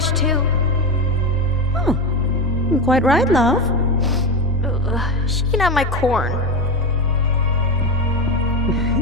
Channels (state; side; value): normal; both; correlation 0.19